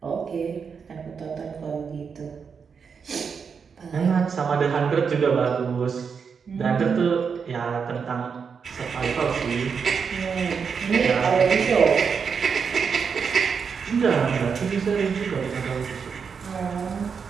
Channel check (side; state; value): left; quieter; 6.1 dB